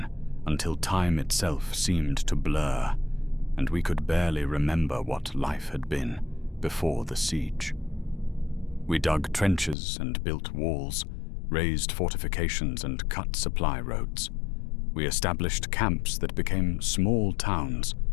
until time itself seemed to blur, and we could barely remember what life had been before the siege. We dug trenches and built walls, raised fortifications and cut supply roads. We established camps that became small towns,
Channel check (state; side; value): drops out; right; at 9.8 s